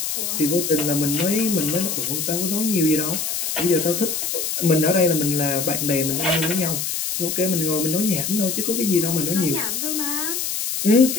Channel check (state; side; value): noise; left; hiss, 2 dB below the sound